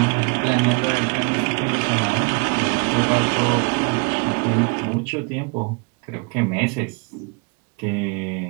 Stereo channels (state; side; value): quieter; left; 32.7 dB